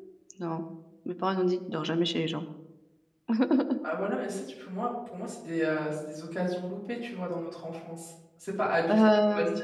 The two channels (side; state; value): both; identical; correlation 1.00